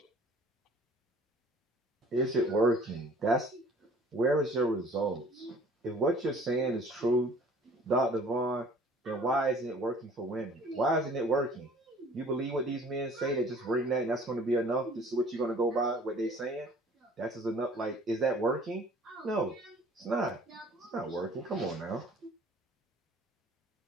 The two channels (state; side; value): normal; both; correlation 0.52